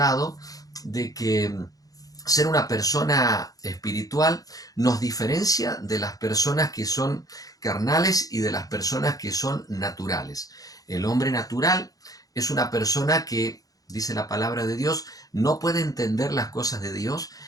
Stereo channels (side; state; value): right; late; 0.17 ms